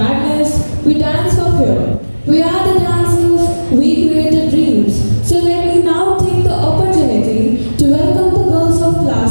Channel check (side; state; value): both; inverted; correlation -1.00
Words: we dance for fear. We are the dancers, we created dreams. So let me now take the opportunity to welcome the girls of